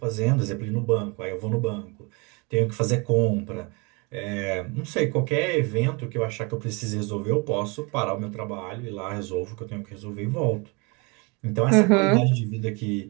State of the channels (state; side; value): quieter; left; 29.5 dB